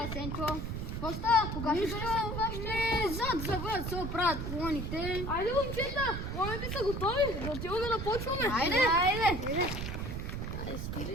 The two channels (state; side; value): noise; right; rumble, 4 dB below the sound